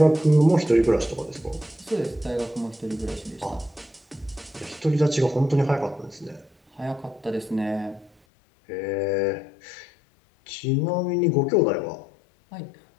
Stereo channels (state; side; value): drops out; right; at 8.1 s